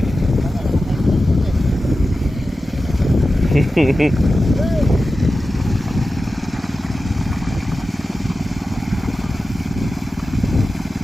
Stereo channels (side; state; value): both; normal; correlation 0.93